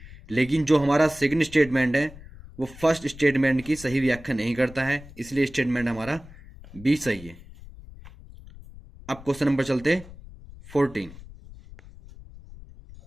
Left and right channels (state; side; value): noise; left; rumble, 18 dB below the sound